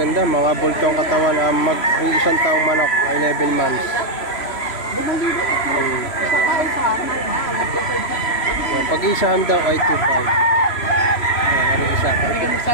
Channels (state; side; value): late; right; 3.0 ms